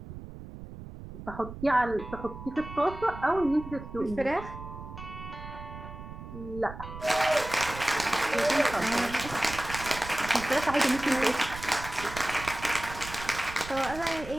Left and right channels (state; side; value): noise; right; rumble, 12 dB below the sound